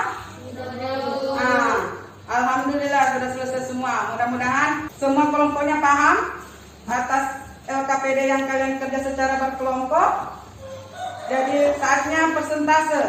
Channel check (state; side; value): identical; both; correlation 1.00